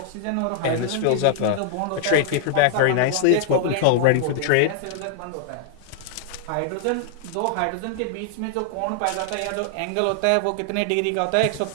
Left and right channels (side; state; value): both; different; correlation -0.01